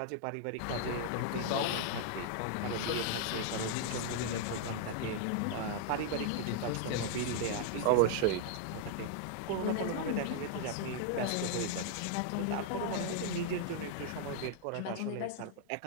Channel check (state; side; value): different; both; correlation 0.00